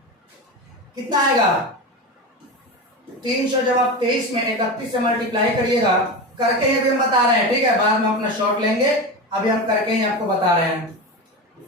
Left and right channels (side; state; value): both; normal; correlation 0.23